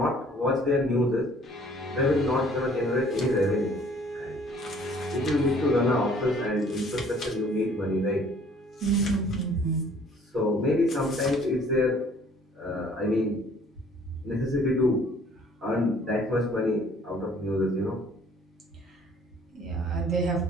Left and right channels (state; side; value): normal; both; correlation 0.56